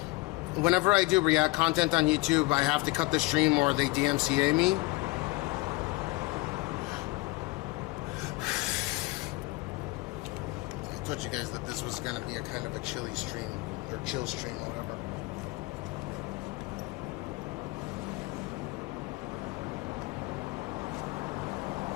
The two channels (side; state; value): right; quieter; 23.2 dB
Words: whenever I do React content on YouTube, I have to cut the stream or they DMCA me. I told you guys that this was going to be a kind of a chilly stream, or chill stream, or whatever.